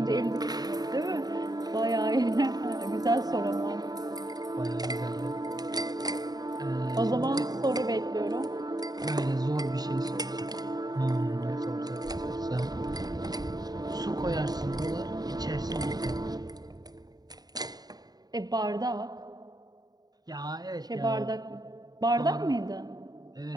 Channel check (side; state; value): left; late; 0.19 ms